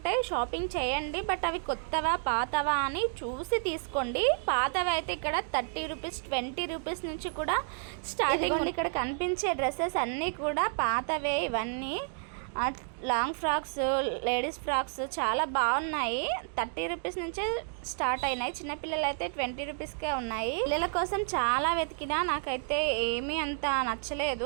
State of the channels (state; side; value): silent; left; 57 dB below the other